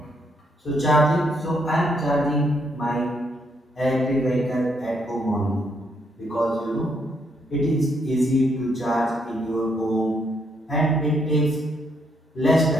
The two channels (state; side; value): normal; both; correlation 0.74